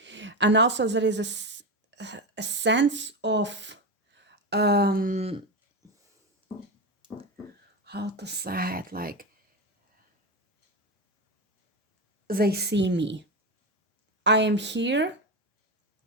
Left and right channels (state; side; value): normal; both; correlation 0.16